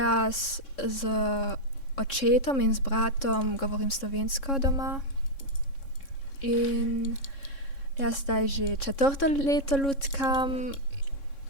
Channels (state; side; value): late; right; 3.6 ms